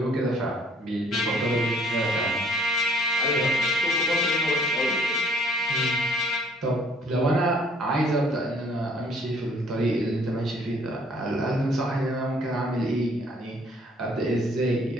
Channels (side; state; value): both; normal; correlation 0.59